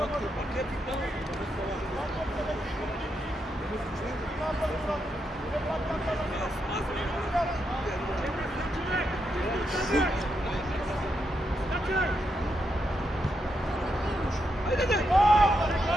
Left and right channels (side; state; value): both; normal; correlation 0.82